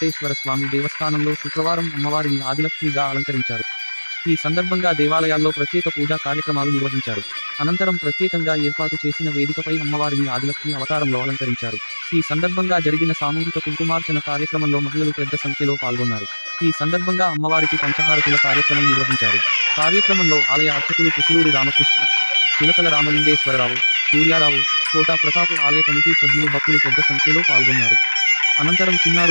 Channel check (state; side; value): inverted; both; correlation -1.00